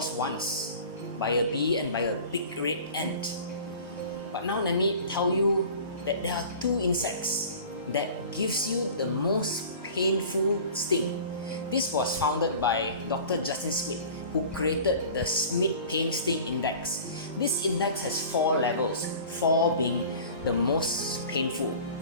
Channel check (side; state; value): both; inverted; correlation -0.42